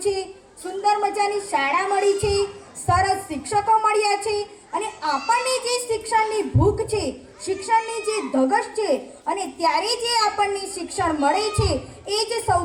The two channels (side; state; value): both; identical; correlation 1.00